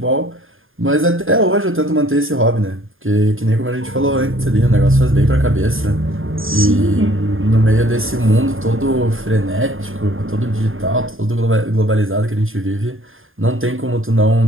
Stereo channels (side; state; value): left; late; 0.59 ms